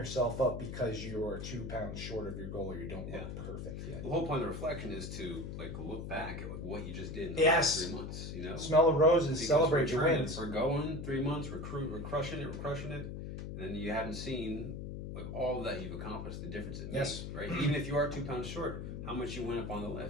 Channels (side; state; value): left; noise; hum, 7 dB below the sound